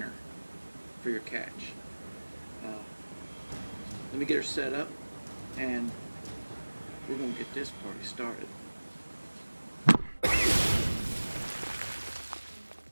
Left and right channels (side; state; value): both; inverted; correlation -1.00